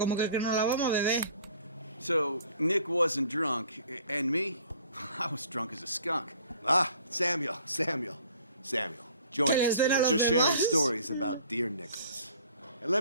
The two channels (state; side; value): inverted; both; correlation -0.52